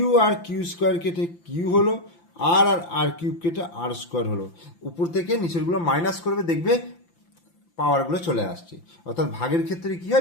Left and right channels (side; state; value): right; late; 5.8 ms